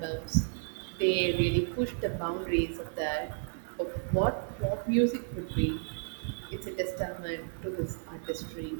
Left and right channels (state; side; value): silent; left; digital silence